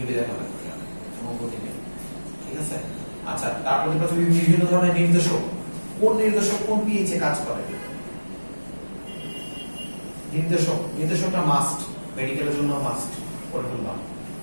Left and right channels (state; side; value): inverted; both; correlation -1.00